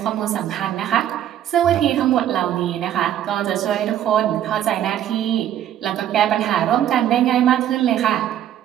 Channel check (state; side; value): quieter; left; 11.2 dB